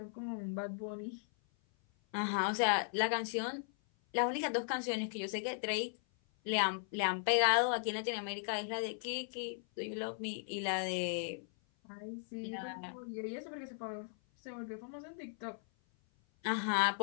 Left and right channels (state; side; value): silent; right; 53 dB below the other